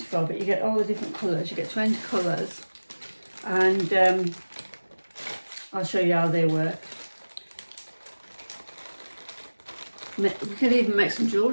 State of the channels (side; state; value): both; inverted; correlation -1.00